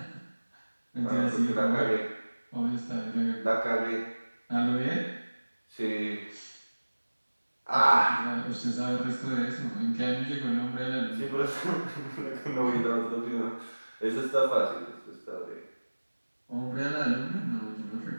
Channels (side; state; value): both; inverted; correlation -1.00